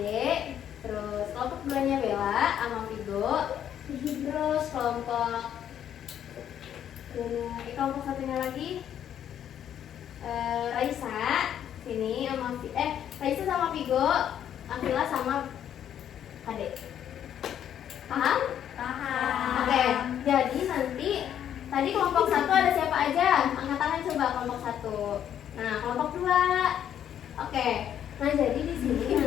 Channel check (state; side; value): quieter; right; 9.9 dB